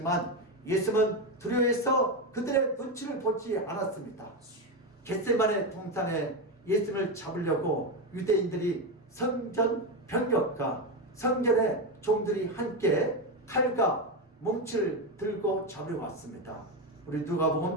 예수님은 두려워해서 그들의 눈치를 보지 않았습니다. 겟세마네 동산에 예수님을 잡으려고 유대인들이 성전 병력과 성전의 종들이 함께 칼과 뭉치를 들고 잡으려 왔습니다. 우리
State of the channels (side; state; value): both; normal; correlation 0.12